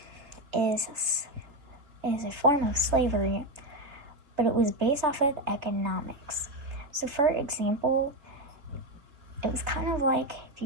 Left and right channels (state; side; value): late; left; 3.4 ms